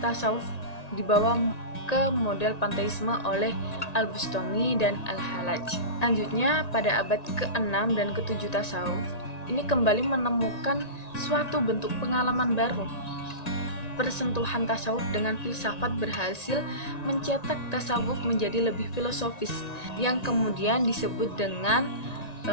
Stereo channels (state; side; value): late; right; 1.9 ms